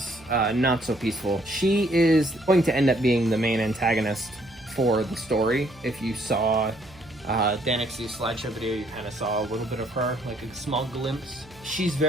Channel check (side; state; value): right; noise; hum, 24 dB below the sound